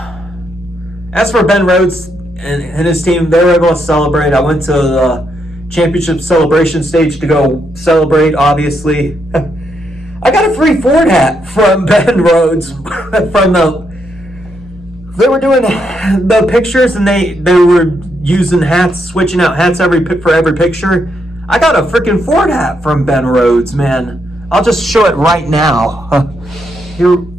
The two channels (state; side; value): normal; both; correlation 0.78